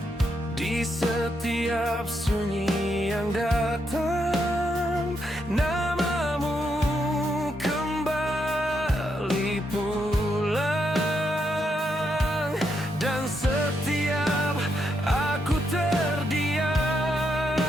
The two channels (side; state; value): both; normal; correlation 0.80